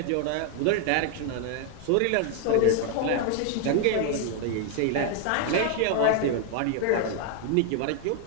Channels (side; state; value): both; different; correlation 0.00